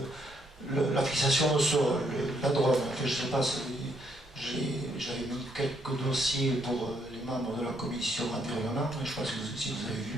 la fixation au sol, la drone. Enfin, je ne sais pas si j'avais mis quelques dossiers pour les membres de la commission environnement, je ne sais pas si vous avez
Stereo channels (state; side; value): normal; both; correlation 0.72